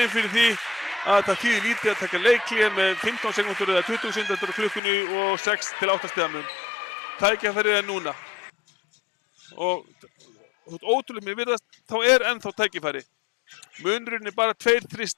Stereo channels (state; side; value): drops out; right; at 4.8 s